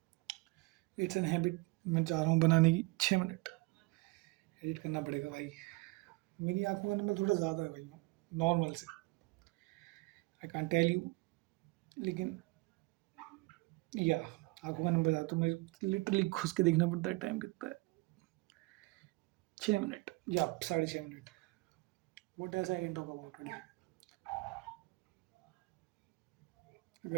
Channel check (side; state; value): left; quieter; 24.1 dB